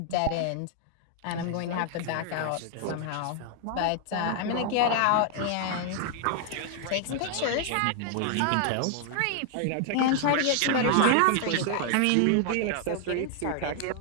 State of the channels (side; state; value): both; different; correlation 0.00